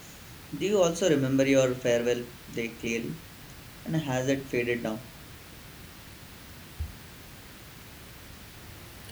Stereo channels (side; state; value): both; identical; correlation 1.00